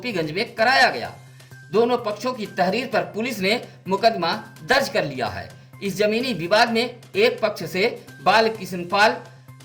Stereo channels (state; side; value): identical; both; correlation 1.00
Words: में कराया गया। दोनों पक्षों की तहरीर पर पुलिस ने मुकदमा दर्ज कर लिया है। इस जमीनी विवाद में एक पक्ष से बालकृष्ण पाल,